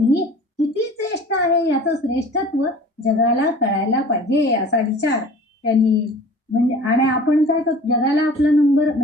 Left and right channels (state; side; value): normal; both; correlation 0.44